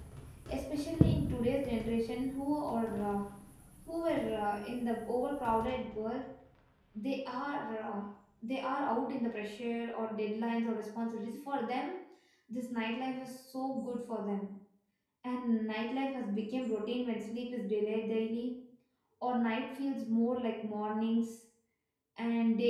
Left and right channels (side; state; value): both; identical; correlation 1.00